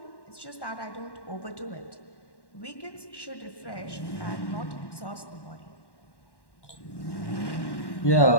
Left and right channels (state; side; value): late; right; 1.1 ms